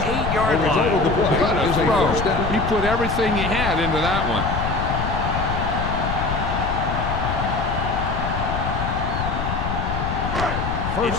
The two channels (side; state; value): left; noise; rumble, 3 dB below the sound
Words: line. What a throw. He put everything he had into that one.